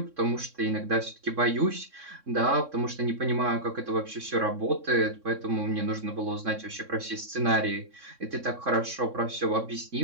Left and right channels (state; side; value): late; left; 3.6 ms